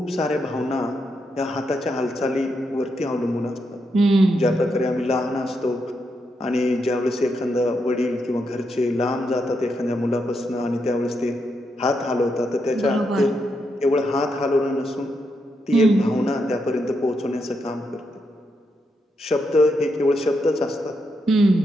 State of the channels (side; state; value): both; normal; correlation 0.82